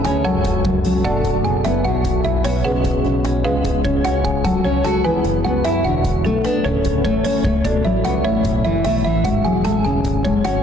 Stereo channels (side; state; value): both; normal; correlation 0.69